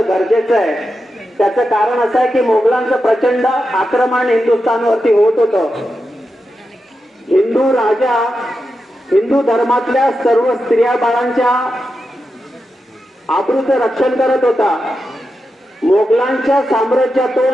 आहे। त्याचं कारण असं आहे की मोगलांचं प्रचंड आक्रमण हिंदुस्थानवरती होत होतं। हिंदू राजा हिंदू धर्मातल्या सर्व स्त्रिया बाळांच्या आबरूचं रक्षण करत होता। मोगलांच्या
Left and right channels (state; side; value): normal; both; correlation 0.89